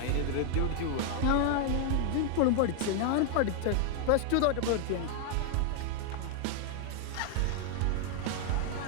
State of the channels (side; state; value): both; different; correlation 0.00